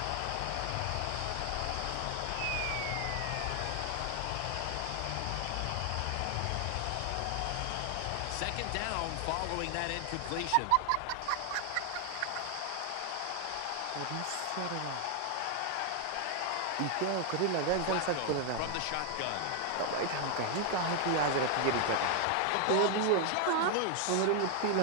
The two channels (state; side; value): different; both; correlation 0.00